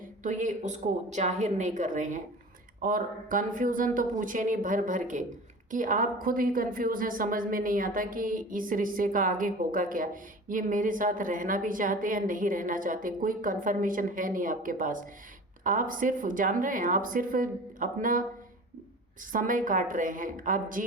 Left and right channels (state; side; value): normal; both; correlation 0.38